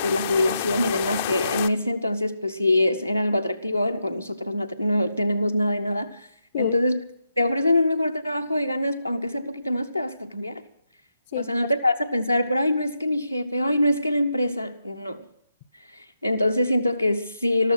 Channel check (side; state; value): both; inverted; correlation -0.84